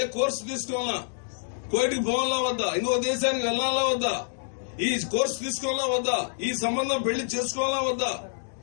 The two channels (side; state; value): right; silent; digital silence